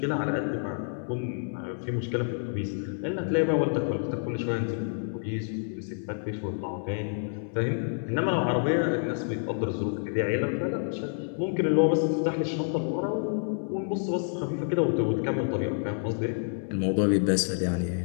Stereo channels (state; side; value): silent; right; 59 dB below the other